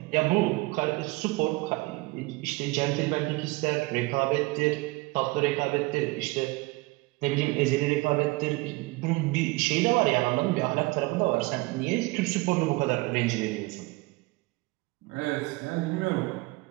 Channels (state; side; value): quieter; left; 23.4 dB